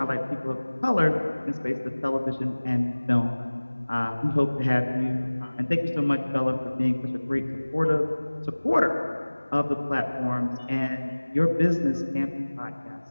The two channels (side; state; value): both; inverted; correlation -1.00